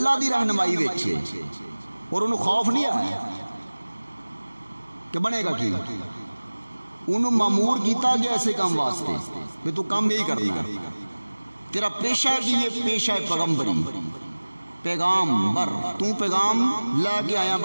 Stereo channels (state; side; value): inverted; both; correlation -1.00